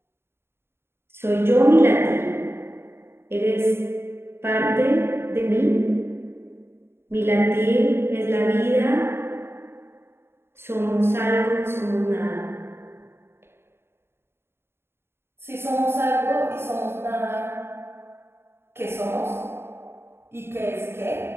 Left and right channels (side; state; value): left; late; 0.11 ms